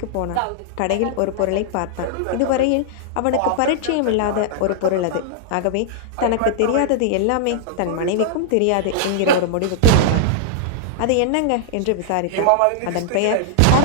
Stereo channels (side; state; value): both; different; correlation -0.01